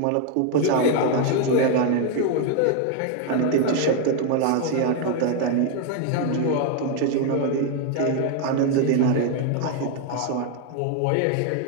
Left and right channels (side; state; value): both; different; correlation 0.01